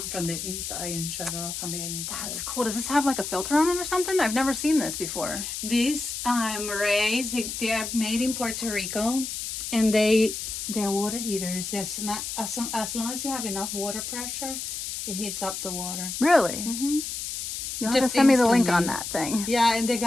from the inside and shut it off on the inside. That's cool. Does this have like a filter on it or something? I've never seen this before. These marays, they are made in Puerto Rico, and they're water heaters. It's not, as long as you have enough water pressure, it heats up the water. Really? You'll have to send me the link on instantly. that thing. Yeah, and the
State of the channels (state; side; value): noise; left; hiss, 5 dB below the sound